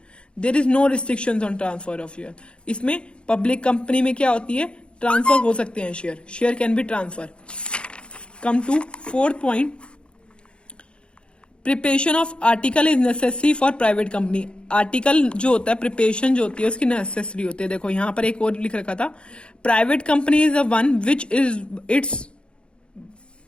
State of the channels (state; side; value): late; right; 0.056 ms